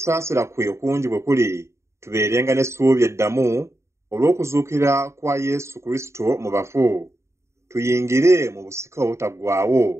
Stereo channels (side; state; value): left; late; 0.14 ms